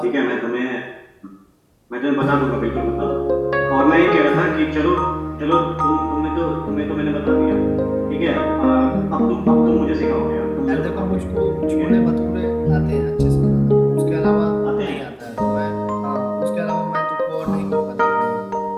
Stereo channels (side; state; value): both; identical; correlation 1.00